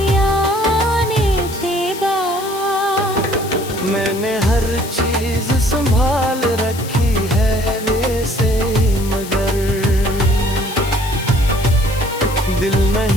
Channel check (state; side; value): noise; left; hiss, 13 dB below the sound